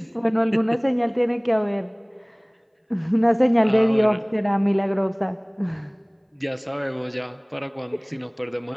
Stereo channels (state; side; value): identical; both; correlation 1.00